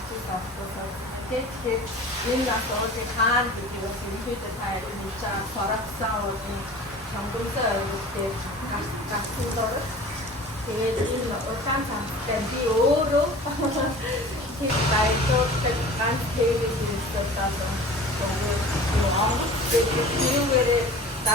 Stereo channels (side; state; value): both; normal; correlation 0.41